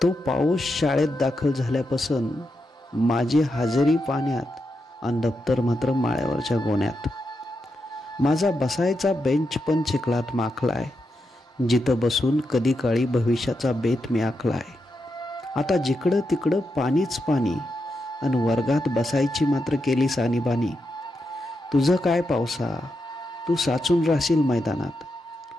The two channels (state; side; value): normal; both; correlation 0.85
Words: तो पाऊस शाळेत दाखल झाल्यापासून माझी हजेरी पाण्यात आणि दप्तर मात्र माळ्यावरच्या गोण्यात. माझा बसायचा बेंच पण चिखलात माखलाय, जिथं बसून कधी काळी भविष्याचा बेत मी आखलाय. आता जिकडं तिकडं पाणीच पाणी आणि वर्गात बसायची मात्र केली सानीबानी. तुझं काय पावसा, तू साचून राहशील मैदानात,